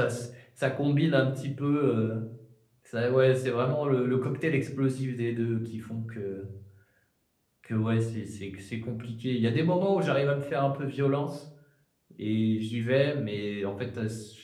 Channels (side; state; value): both; identical; correlation 1.00